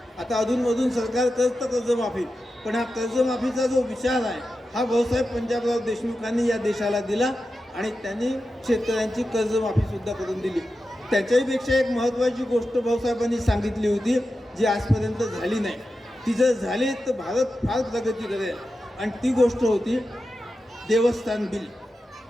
आता अधूनमधून सरकार करतं कर्जमाफी, पण हा कर्जमाफीचा जो विचार आहे हा भाऊसाहेब पंजाबराव देशमुखांनी या देशाला दिला आणि त्यांनी शेतकऱ्यांची कर्जमाफीसुद्धा करून दिली. त्याच्याहीपेक्षा एक महत्त्वाची गोष्ट भाऊसाहेबांनी सांगितली होती जी आजपर्यंत झाली नाही. ती जर झाली तर भारत फार प्रगती करेल आणि ती गोष्ट होती देवस्थान बिल.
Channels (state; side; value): normal; both; correlation 0.91